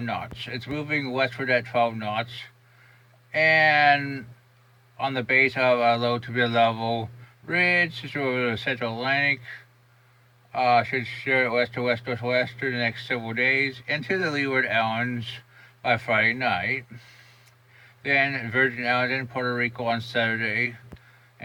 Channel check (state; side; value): identical; both; correlation 1.00